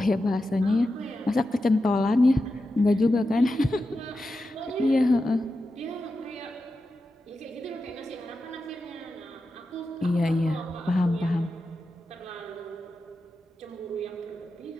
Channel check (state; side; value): normal; both; correlation 0.90